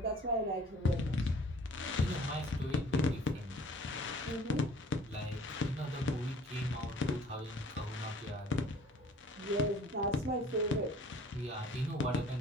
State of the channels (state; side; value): normal; both; correlation 0.51